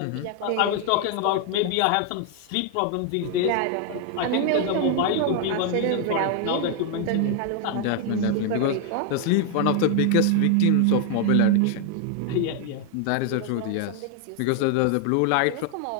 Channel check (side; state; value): both; different; correlation 0.00